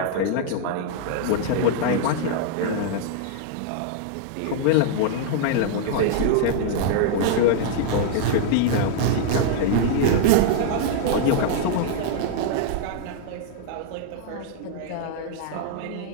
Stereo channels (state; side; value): different; both; correlation -0.01